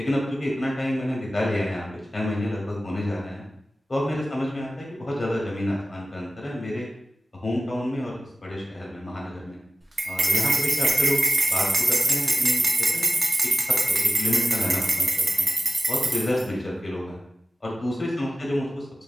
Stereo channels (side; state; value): both; normal; correlation 0.95